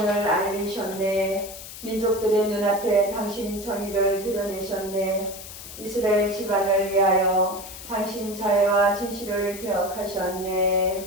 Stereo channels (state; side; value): noise; left; hiss, 13 dB below the sound